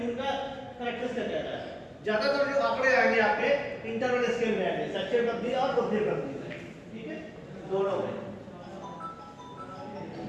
टूल का करेक्टरिस्टिक क्या है। ज्यादातर जो आंकड़े आएंगे आपके इंटरवल स्केल में आएंगे, शैक्षिक लब्धि और बुद्धि लब्धि में। ठीक है, दोनों में।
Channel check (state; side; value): identical; both; correlation 1.00